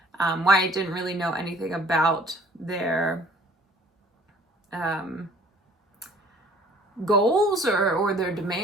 Wyatt didn't really know anything about their goals or their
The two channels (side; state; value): both; normal; correlation 0.54